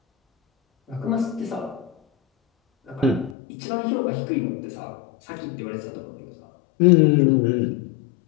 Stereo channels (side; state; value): right; drops out; at 3.4 s